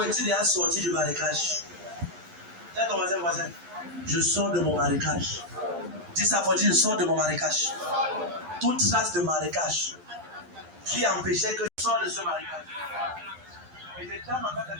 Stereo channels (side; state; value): left; late; 11 ms